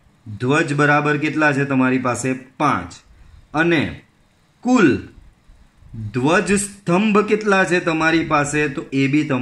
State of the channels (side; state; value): both; identical; correlation 1.00